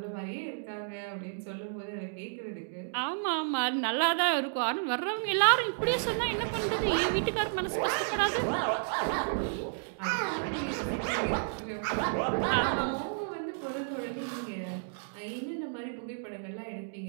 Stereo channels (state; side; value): silent; left; digital silence